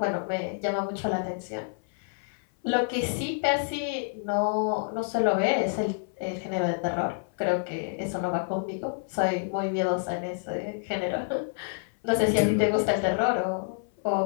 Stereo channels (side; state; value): right; silent; 55 dB below the other